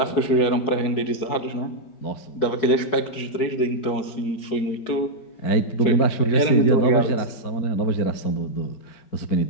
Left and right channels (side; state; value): right; late; 4.7 ms